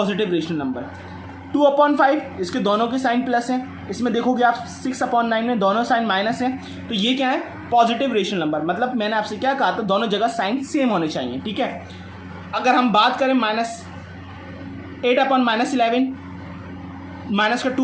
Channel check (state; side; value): identical; both; correlation 1.00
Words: rational number. 2/5 इसके दोनों के साइन प्लस हैं, इसमें देखोगे आप 6/9 में दोनों साइन माइनस हैं, तो ये क्या है? Positive rational number. मतलब मैंने आपसे क्या कहा था, दोनों जगह साइन सेम होने चाहिए। ठीक है, अगर हम बात करें -8/-11, माइनस का